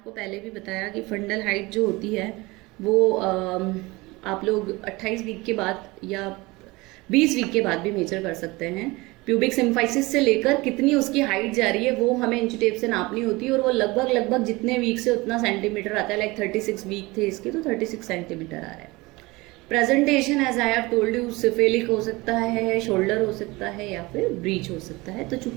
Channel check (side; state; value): left; quieter; 22.5 dB